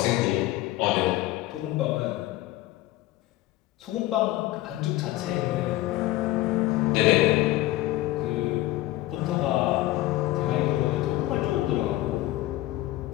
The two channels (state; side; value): quieter; right; 16.7 dB